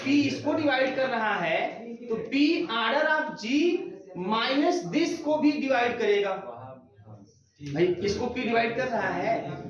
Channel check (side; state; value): both; identical; correlation 1.00